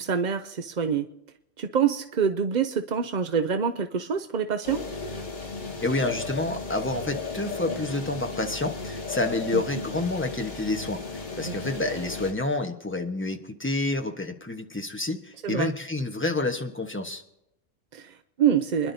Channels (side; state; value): both; normal; correlation 0.10